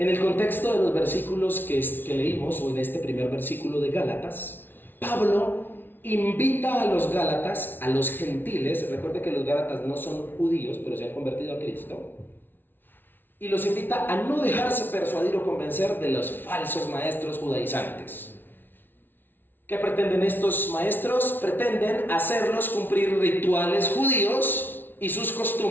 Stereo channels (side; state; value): right; late; 0.097 ms